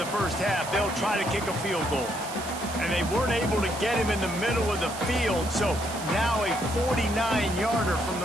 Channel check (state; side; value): noise; right; hiss, 11 dB below the sound